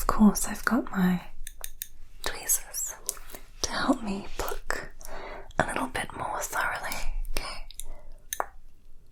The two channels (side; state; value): both; identical; correlation 1.00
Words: course, I've got my tweezers to help me pluck a little bit more thoroughly. Okay.